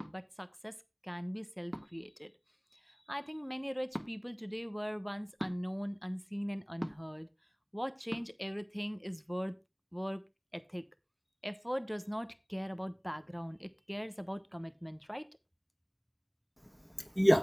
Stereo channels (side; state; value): both; identical; correlation 1.00